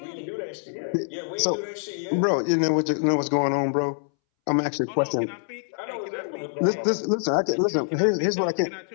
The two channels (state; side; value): silent; right; 61 dB below the other